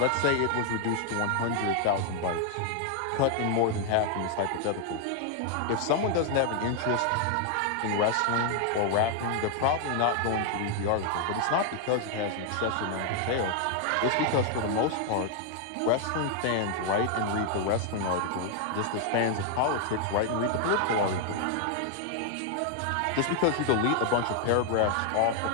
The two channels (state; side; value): different; both; correlation 0.00